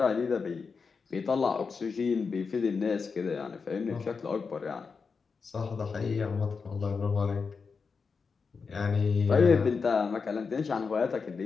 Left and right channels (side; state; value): right; quieter; 5.2 dB